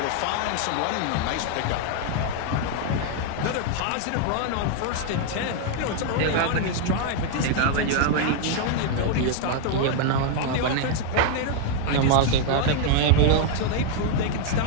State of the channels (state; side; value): different; both; correlation 0.00